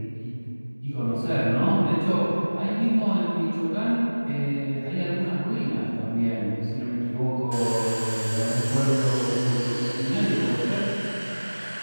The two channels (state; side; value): inverted; both; correlation -1.00